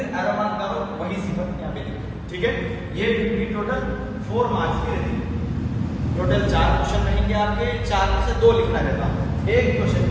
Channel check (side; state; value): both; identical; correlation 1.00